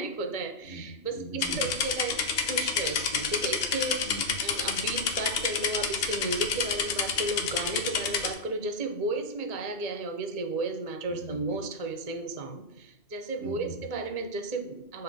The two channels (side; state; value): right; late; 2.8 ms